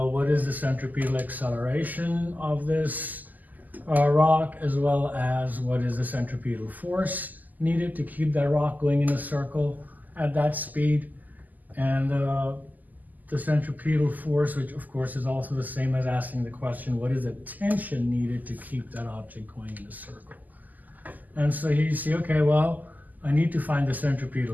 what is the centripetal acceleration of this rock, as well as what is the centripetal force needed to keep that rock going in a circle at that speed. And the centripetal force, which of course is also the same as asking the question, what is the tension needed to keep that object going in a circle? And so here you see, okay, well, I need to find the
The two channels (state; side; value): late; left; 0.082 ms